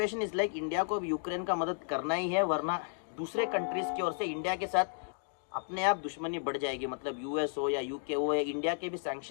is like India को भी Ukraine का मदद करना ही है, वरना दूसरे countries की ओर से इंडिया के साथ अपने आप दुश्मनी बढ़ जाएगी। मतलब यूएस हो या यूके हो, इंडिया के भी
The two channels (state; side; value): silent; right; digital silence